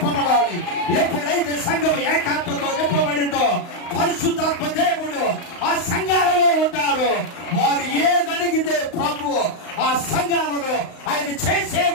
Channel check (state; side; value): late; right; 35 ms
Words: ఎప్పుడైతే సంఘం ఏకాత్మతో నింపబడిందో పరిశుద్ధాత్మ దేవుడు ఆ సంఘాలలో ఉంటారు. వారు ఏదడిగితే ప్రభు ఆ సంఘాలలో ఆయన